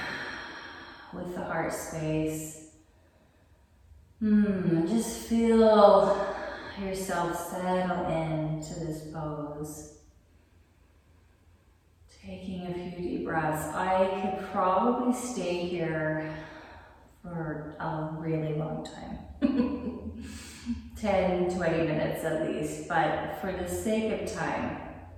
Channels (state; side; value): identical; both; correlation 1.00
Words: with the heart space. Just feel yourself settle into this pose. Taking a few deep breaths. I could probably stay here for a really long time. 10, 20 minutes at least, but for the sake of time,